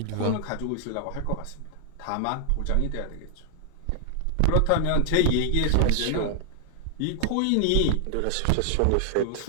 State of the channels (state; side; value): different; both; correlation 0.00